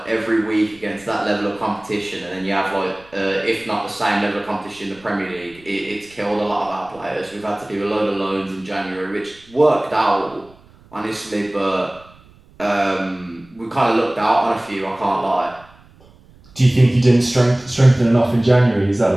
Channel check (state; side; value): noise; right; rumble, 27 dB below the sound